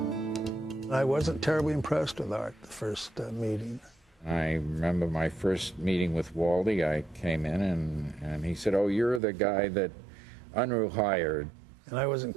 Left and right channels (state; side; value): drops out; left; at 9.2 s